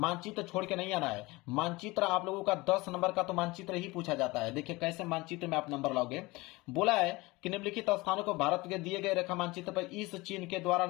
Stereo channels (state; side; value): quieter; right; 22.4 dB